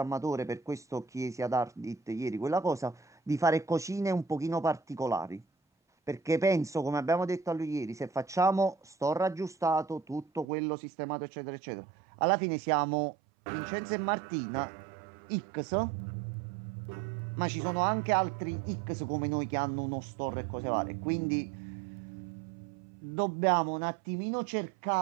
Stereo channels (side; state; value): left; drops out; at 10.5 s